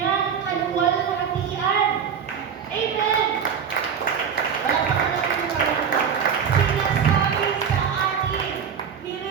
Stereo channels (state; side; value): quieter; left; 7.2 dB